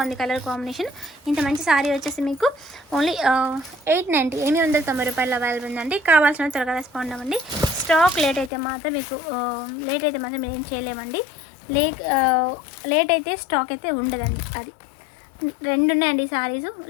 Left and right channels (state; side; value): drops out; right; at 8.5 s